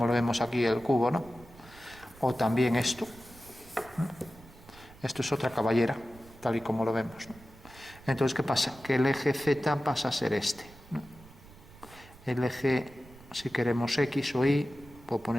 lo vemos aquí el cubo, ¿no? O también esto, ¿no? Esto es otra caballera, tal y como lo vemos, ¿no? Entonces, ¿qué pasa? Que el eje Z pasa a ser este, ¿no? El eje, si queremos X o Y, puedo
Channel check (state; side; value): noise; right; rumble, 21 dB below the sound